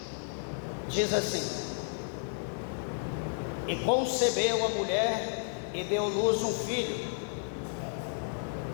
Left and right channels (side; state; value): right; silent; digital silence